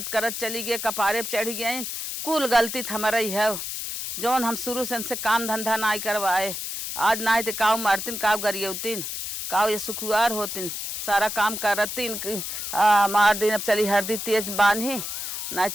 करत चली गए, कपारे पे चढ़ गए। कुल गलती हमारा ही है जौन हम शुरू से इनसे काम धंधा ना करवाए। आज ना तो काव मारतीन काव गरियौतीन काव ये सुखुआर होतीन सारा काम करतीन। मार दिन अब चली हरदी तेज बांधी ना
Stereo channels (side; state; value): left; noise; hiss, 5 dB below the sound